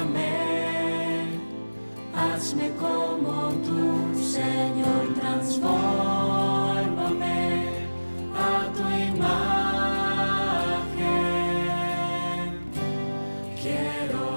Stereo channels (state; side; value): inverted; both; correlation -1.00